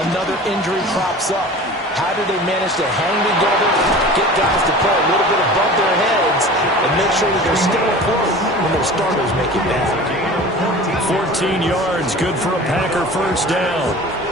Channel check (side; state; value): both; normal; correlation 0.39